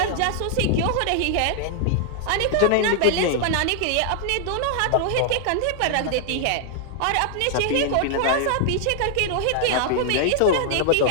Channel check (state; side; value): different; both; correlation 0.00